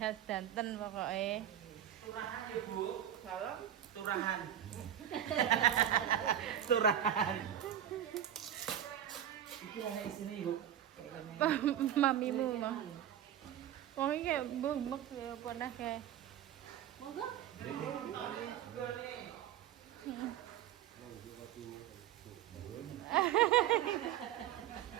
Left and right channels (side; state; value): left; quieter; 10.8 dB